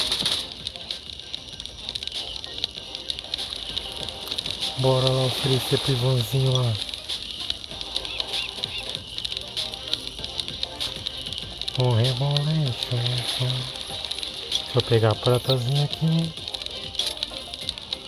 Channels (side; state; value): both; identical; correlation 1.00